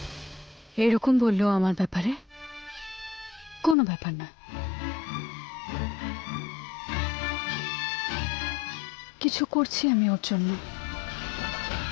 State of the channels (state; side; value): drops out; right; at 3.8 s